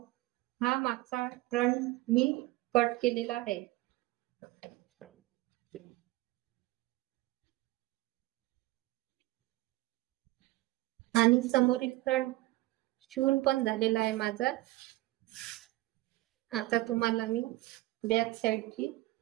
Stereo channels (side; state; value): left; quieter; 18.6 dB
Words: हा मागचा फ्रंट मी कट केलेला आहे आणि समोरील फ्रंट शिवून पण झालेला आहे माझा. आता तुम्हाला मी